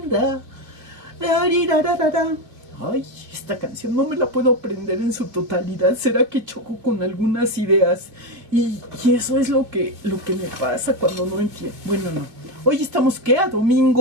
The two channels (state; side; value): late; left; 2.4 ms